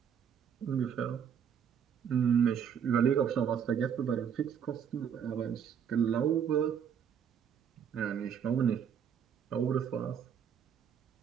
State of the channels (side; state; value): left; quieter; 8.0 dB